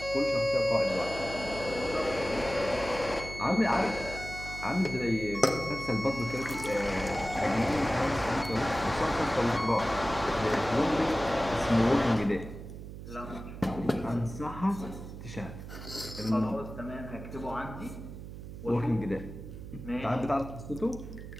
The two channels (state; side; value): noise; right; hum, 11 dB below the sound